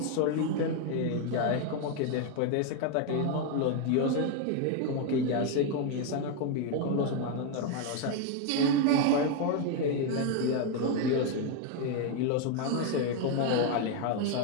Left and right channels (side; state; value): both; different; correlation 0.01